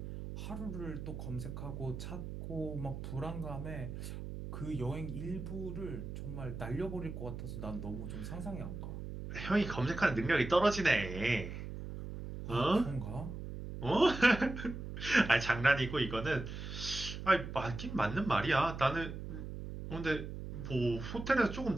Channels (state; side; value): noise; right; hum, 8 dB below the sound